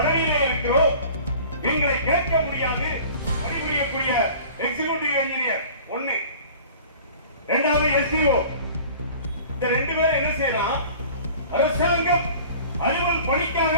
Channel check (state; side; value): inverted; both; correlation -0.45